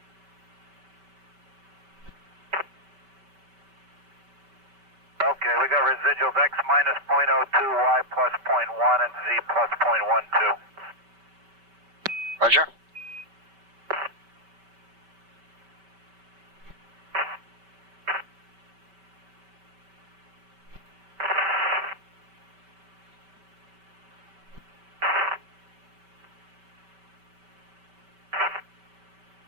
Okay, we got residuals X minus 0.02, Y plus 0.1, and Z plus 0.12. Roger.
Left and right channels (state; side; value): late; left; 5.2 ms